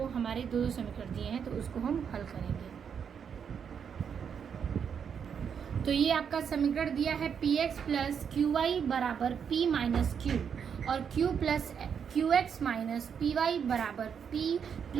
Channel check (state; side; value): quieter; left; 7.3 dB